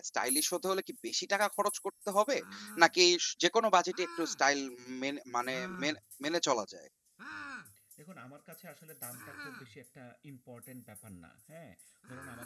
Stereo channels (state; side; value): identical; both; correlation 1.00